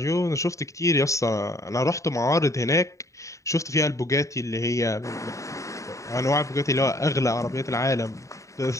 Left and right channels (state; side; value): late; right; 0.15 ms